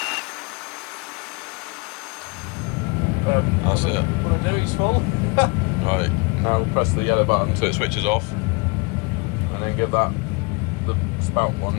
That's it. What I do is full. Right, now press the yellow button so it switches off. And then give that the spout one.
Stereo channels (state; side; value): quieter; right; 29.3 dB